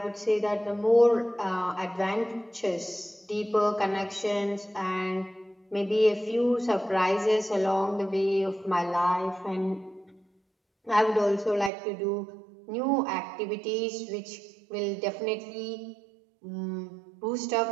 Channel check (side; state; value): left; drops out; at 11.7 s